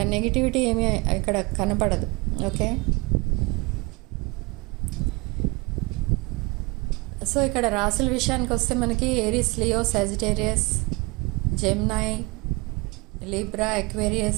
నెగిటివిటీ ఏమీ ఇక్కడ కనపడదు. ఓకే, సో ఇక్కడ రాసుల విషయానికి వస్తే మనకి Aries, Leo, Sagittarius, Gemini, Libra,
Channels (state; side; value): quieter; left; 26.2 dB